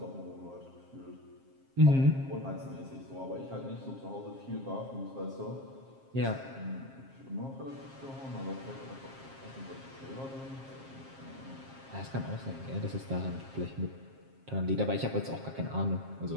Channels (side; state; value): left; late; 7.5 ms